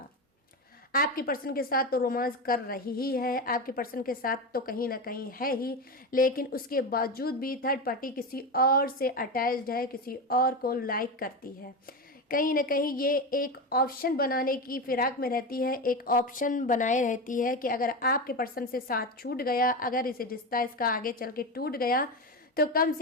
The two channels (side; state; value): both; normal; correlation 0.19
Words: आपके पर्सन के साथ तो रोमांस कर रही ही है, आपके पर्सन के साथ तो कहीं ना कहीं है ही, लेकिन उसके बावजूद भी थर्ड पार्टी किसी और से अटैच्ड है, किसी और को लाइक करती है। कहीं ना कहीं ये एक ऑप्शन बनाने की फिराक में रहती है, एक ऑप्शन बनाए रहती है कि अगर आपके पर्सन से साथ छूट गया, अगर इसे रिश्ता इसका आगे चल के टूट गया, तो कम